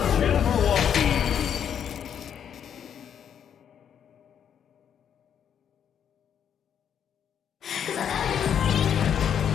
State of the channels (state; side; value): quieter; right; 8.6 dB